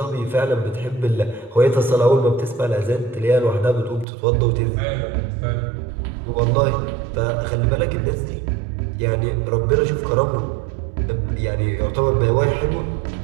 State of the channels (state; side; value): drops out; left; at 4.0 s